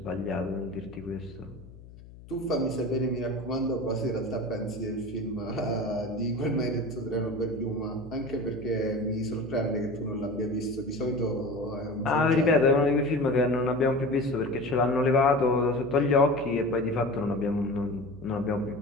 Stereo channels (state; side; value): noise; left; hum, 19 dB below the sound